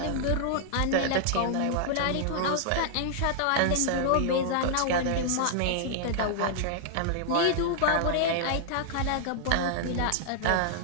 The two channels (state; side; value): different; both; correlation -0.01